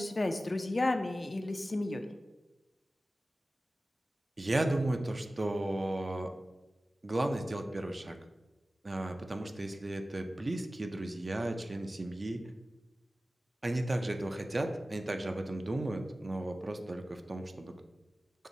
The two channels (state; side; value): normal; both; correlation 0.96